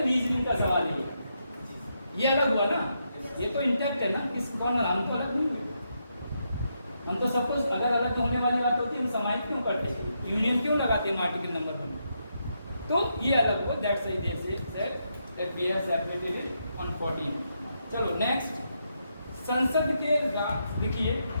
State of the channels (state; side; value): inverted; both; correlation -0.81